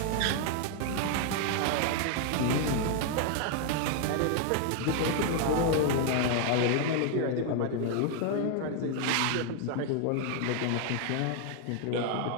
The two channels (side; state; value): both; different; correlation 0.00